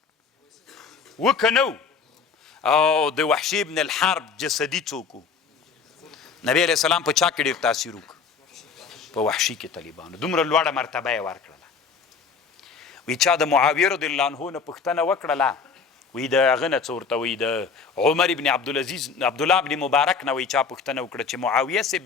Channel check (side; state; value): right; quieter; 5.5 dB